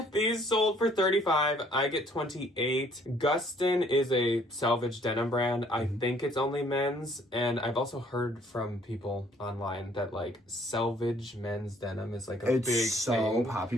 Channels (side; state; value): both; normal; correlation 0.61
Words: These sold for 35. I get 28. Gustin is a selvage denim brand. I think it's only men's, and I've also heard from people online that like selvage men's denim is like a It's big so thing.